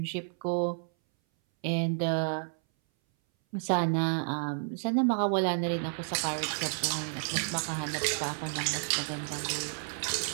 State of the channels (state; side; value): silent; left; 57 dB below the other